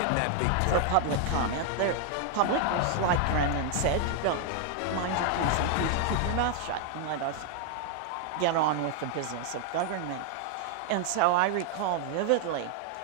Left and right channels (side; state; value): both; different; correlation 0.00